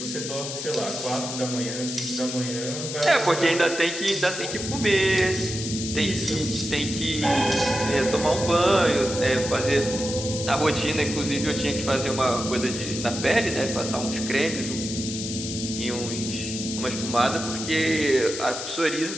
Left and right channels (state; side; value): noise; left; hiss, 6 dB below the sound